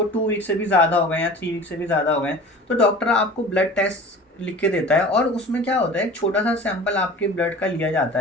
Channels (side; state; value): both; normal; correlation 0.40